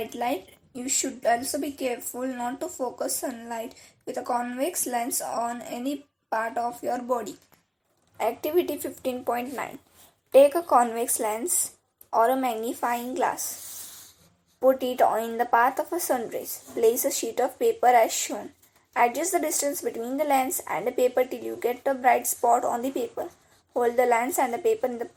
light. You should also be careful not to focus sunlight with a convex lens on any part of your body. Activity 15.9. Take a convex lens or a magnifying glass. Put it in the path of a sun rays. Place a sheet of paper as shown. Adjust the distance between the lens and the paper till you get a bright spot on the paper. Hold the lens and the paper in the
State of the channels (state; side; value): identical; both; correlation 1.00